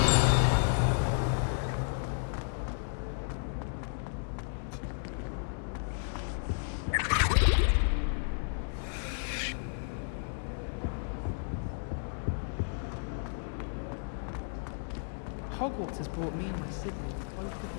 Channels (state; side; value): silent; right; digital silence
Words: Hogwarts has brought me and my siblings closer